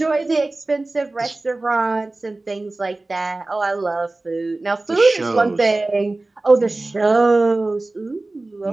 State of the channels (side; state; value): left; quieter; 3.0 dB